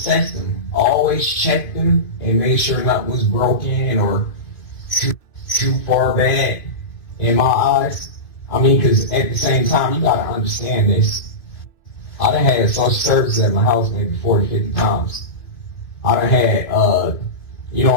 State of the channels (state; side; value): late; right; 2.6 ms